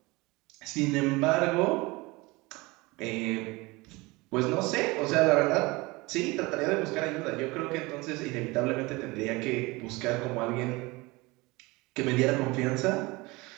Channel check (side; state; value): left; quieter; 23.3 dB